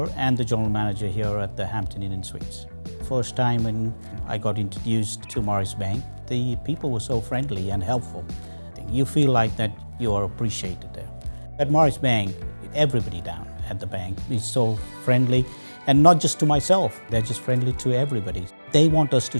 and the general manager here at the Hampton Inn and Suites. First time when I got introduced to Morris Bank, the people were so friendly and helpful. You feel like that you are appreciated there. At Morris Bank, everybody down at the bank is so friendly, and not just to myself, they're just friendly to everybody. They want us to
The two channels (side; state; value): both; inverted; correlation -1.00